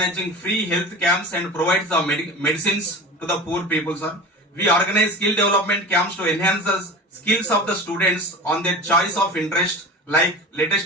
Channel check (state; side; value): normal; both; correlation 0.33